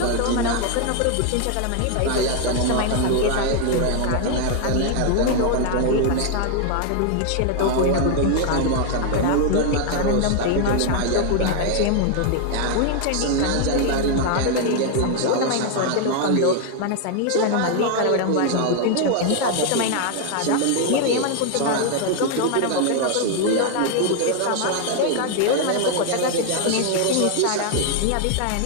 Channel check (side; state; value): both; different; correlation 0.00